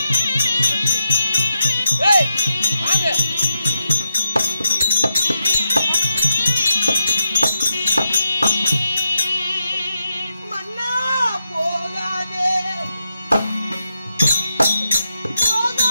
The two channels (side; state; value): both; inverted; correlation -0.85